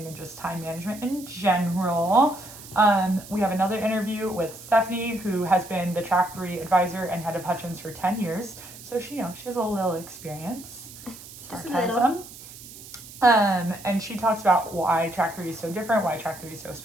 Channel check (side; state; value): right; noise; hiss, 16 dB below the sound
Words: and just time management in general. We have another interview with Stephanie, who has been the track 3 advisor and head of Hutchins for 10 years. So she has a little experience. Sarcasm. And she talks about why track 3 is so different, why track 3 is so